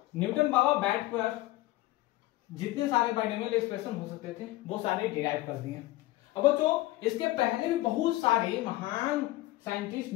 बाबा बैठ पर जितने सारे बाइनोमियल एक्सप्रेशन हो सकते थे वो सारे डिराइव कर दिए। अब बच्चों इसके पहले भी बहुत सारे महान साइंटिस्ट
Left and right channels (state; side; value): quieter; right; 17.7 dB